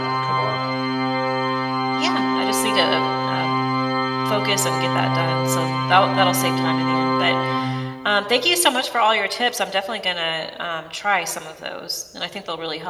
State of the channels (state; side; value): identical; both; correlation 1.00